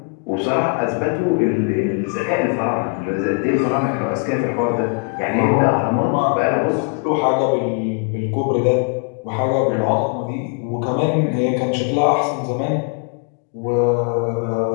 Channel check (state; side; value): quieter; right; 34.7 dB